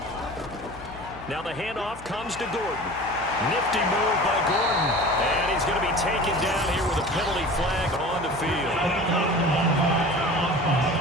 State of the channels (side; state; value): left; noise; hum, 17 dB below the sound